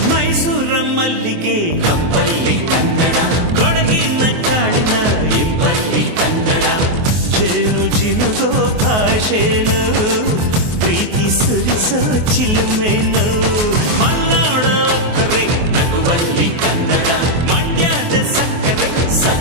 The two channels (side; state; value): left; late; 24 ms